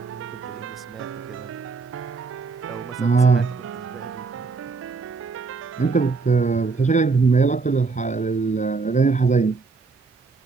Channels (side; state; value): left; quieter; 4.4 dB